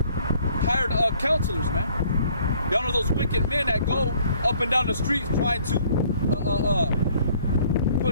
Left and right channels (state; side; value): inverted; both; correlation -0.60